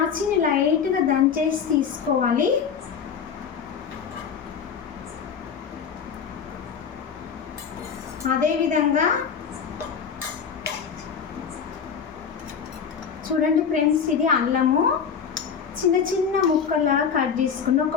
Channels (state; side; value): quieter; right; 6.8 dB